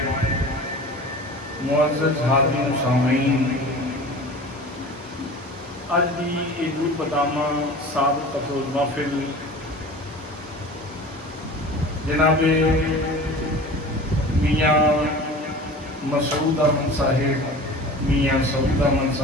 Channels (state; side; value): normal; both; correlation 0.38